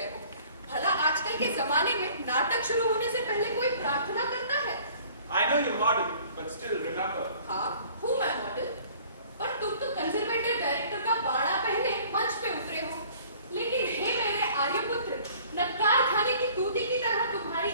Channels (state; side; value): inverted; both; correlation -0.52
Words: हो? भला आजकल के जमाने में नाटक शुरू होने से पहले कोई प्रार्थना करता है? I know you're model, but still remember. हाँ, हूँ मैं मॉडल, पर तुम तो कंजर्वेटिव डायरेक्टर का बाड़ा पहने मंच पे उतरे हो। लेकिन हे मेरे आर्यपुत्र, नक्कार खाने की तूती की तरह तुम्हारी